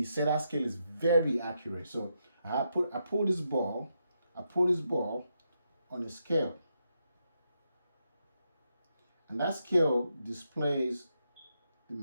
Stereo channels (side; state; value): both; inverted; correlation -0.82